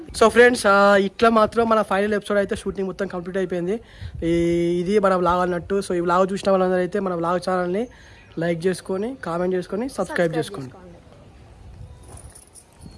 సో ఫ్రెండ్స్ ఇట్లా మాత్రం మన ఫైనల్ ఎపిసోడ్ అయితే షూటింగ్ మొత్తం కంప్లీట్ అయిపోయింది. ఇది మన వ్లాగ్ అన్నట్టు. సో ఈ వ్లాగ్ చూసిన వాళ్ళందరూ అయితే మన వ్లాగ్ ఛానల్ని లైక్ చేసుకొని కామెంట్ చేసుకొని సబ్స్క్రైబ్ చేసుకోండి.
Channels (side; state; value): both; identical; correlation 1.00